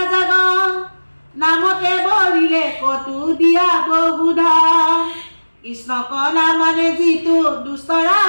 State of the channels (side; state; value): both; inverted; correlation -1.00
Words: নামতে বৰিলে কটু দিয়া বহুধন কৃষ্ণ কনা মানে যিটো দুষ্ট